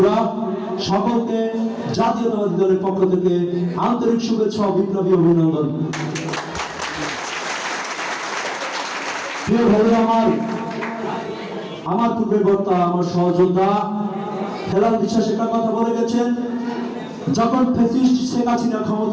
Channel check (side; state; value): both; identical; correlation 1.00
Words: সকলকে জাতীয়তাবাদী দলের পক্ষ থেকে আন্তরিক শুভেচ্ছা ও বিপ্লবী অভিনন্দন। প্রিয় ভাইরা আমার পূর্বে বক্তা, আমার সহযোদ্ধা হেলাল বিশ্বাস একটা কথা বলে গেছেন, যখন ফ্যাসিস্ট শেখ হাসিনা